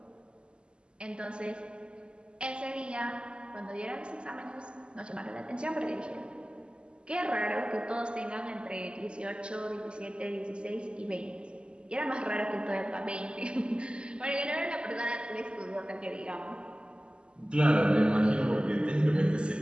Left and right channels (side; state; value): left; late; 0.051 ms